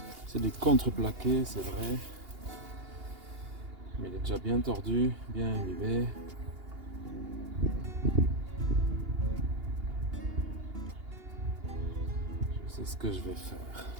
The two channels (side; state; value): left; late; 2.8 ms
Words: C'est du contreplaqué, c'est vrai. Mais il est déjà bien tordu, bien imbibé. Je sais ce que je vais faire